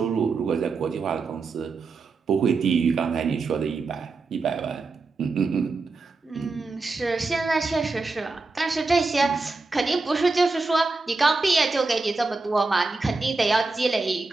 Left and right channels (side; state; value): left; quieter; 3.8 dB